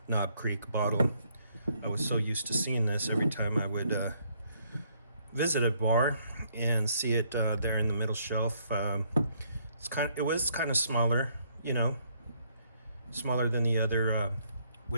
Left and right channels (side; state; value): both; inverted; correlation -0.69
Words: Knob Creek bottle. I was so used to seeing this every time I would visit a bar and see it there in the middle shelf. It was kind of smaller, smaller than the other